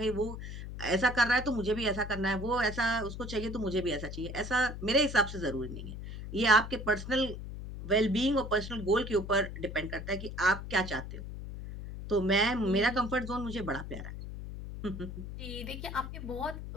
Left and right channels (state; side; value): noise; left; hum, 9 dB below the sound